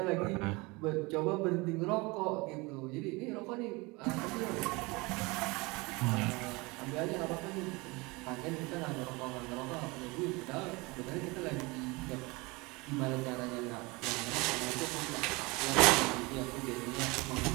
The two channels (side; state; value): left; quieter; 25.1 dB